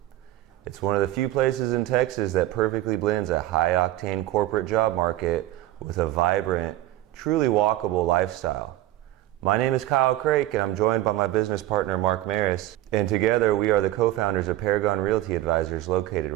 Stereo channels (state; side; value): quieter; left; 15.2 dB